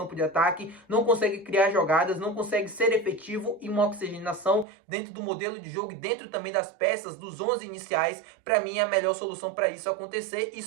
de ataque, não consegue criar jogadas, não consegue ser efetivo em uma oxigenação dentro do modelo de jogo e dentro também das peças, dos 11 iniciais para mim é a melhor solução para isso acontecer.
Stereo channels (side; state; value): left; drops out; at 4.7 s